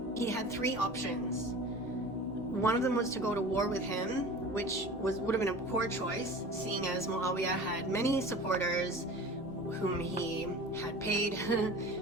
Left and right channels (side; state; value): both; normal; correlation 0.38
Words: he had three options. One of them was to go to war with him, which would have been a poor choice, seeing as Muawiyah had many supporters whom he had paid.